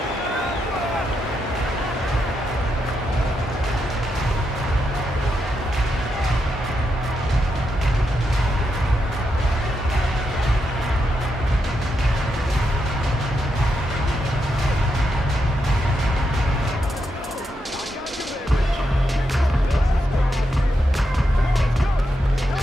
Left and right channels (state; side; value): normal; both; correlation 0.83